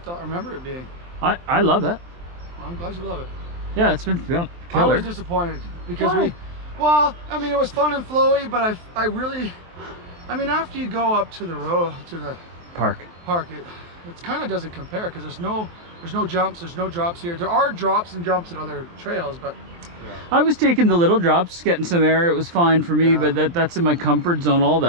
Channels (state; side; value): late; left; 23 ms